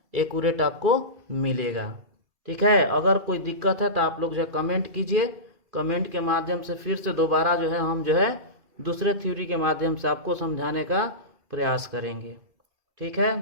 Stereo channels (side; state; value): left; late; 2.6 ms